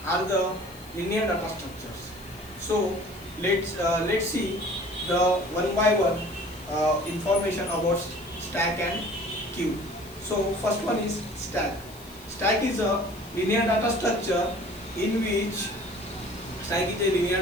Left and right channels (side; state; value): left; noise; hiss, 21 dB below the sound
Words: are the linear data structures. So let's see the one by one information about stack and queue. So first one is stack. Stack is a linear data structure in which